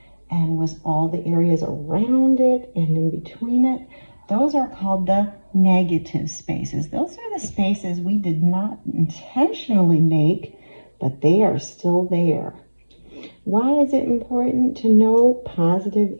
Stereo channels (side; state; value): both; inverted; correlation -1.00